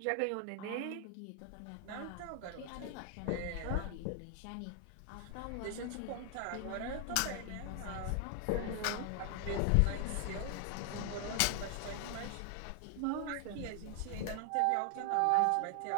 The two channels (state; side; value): different; both; correlation 0.00